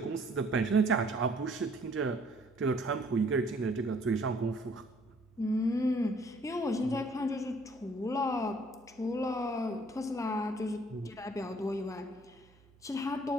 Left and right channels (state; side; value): noise; right; hum, 29 dB below the sound